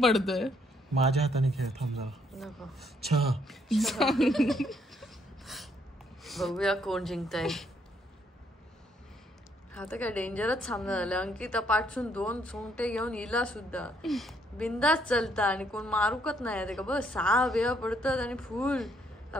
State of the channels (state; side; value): normal; both; correlation 0.70